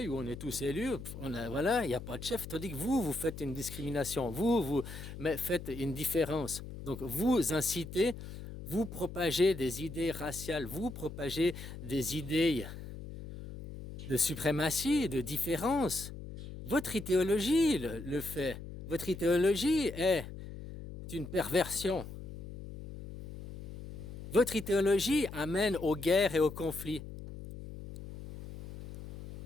ou on est tous élus. Voilà, il n'y a pas de chef. Tandis que vous faites une discrimination. Vous faites une différence. Donc vous incitez, vous propagez des idées raciales, vous propagez des idées de suprématie, de différence. Votre idéologie le fait. Votre idéologie est une perversion. Votre idéologie amène aux guerres et aux conflits.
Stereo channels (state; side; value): noise; left; hum, 11 dB below the sound